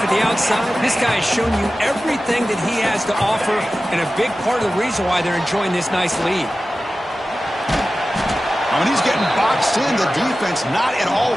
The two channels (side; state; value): both; normal; correlation 0.95